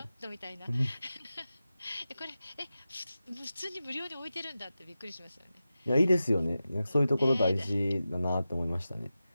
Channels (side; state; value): both; inverted; correlation -0.93